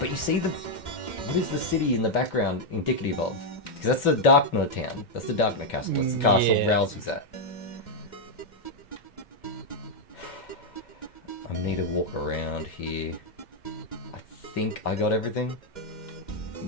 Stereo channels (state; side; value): late; right; 2.1 ms